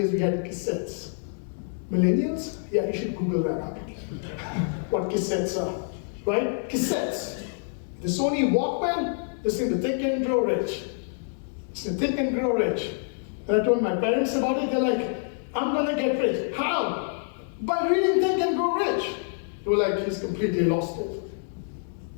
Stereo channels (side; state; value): right; silent; digital silence